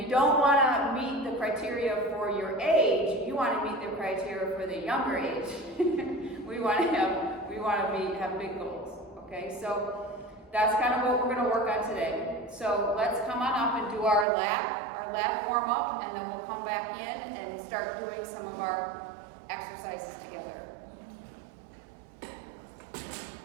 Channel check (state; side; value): drops out; left; at 14.2 s